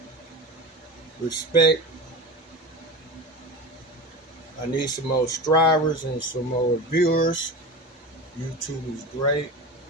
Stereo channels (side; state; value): both; normal; correlation 0.28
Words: Respect. I need some more subscribers and some more viewers. YouTube is great.